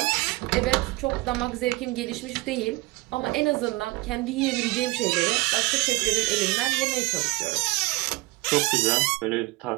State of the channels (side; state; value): left; quieter; 22.4 dB